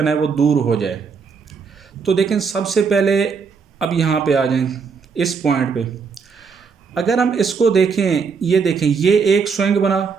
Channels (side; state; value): left; quieter; 5.5 dB